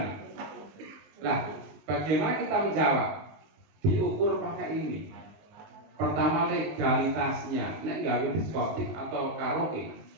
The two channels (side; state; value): left; late; 19 ms